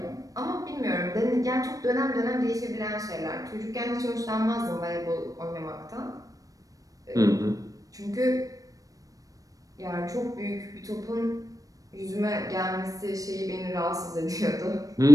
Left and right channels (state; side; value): late; left; 0.17 ms